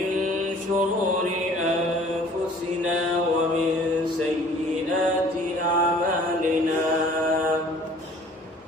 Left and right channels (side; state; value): both; normal; correlation 0.52